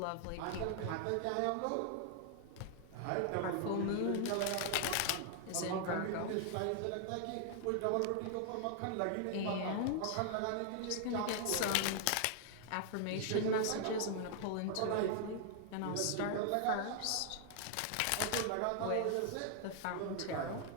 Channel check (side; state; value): both; different; correlation 0.00